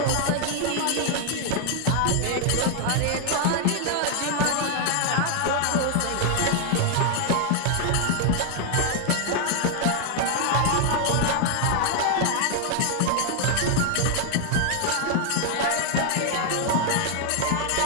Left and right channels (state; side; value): different; both; correlation 0.00